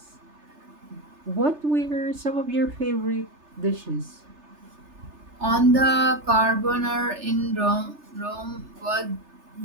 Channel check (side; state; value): left; late; 3.3 ms